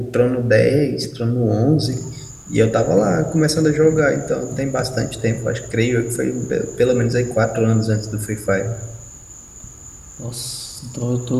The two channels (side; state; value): both; identical; correlation 1.00